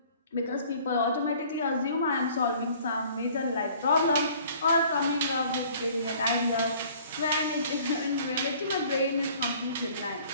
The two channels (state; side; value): inverted; both; correlation -0.53